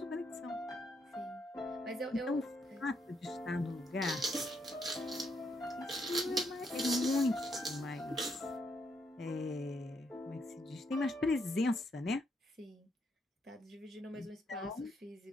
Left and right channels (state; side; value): normal; both; correlation 0.76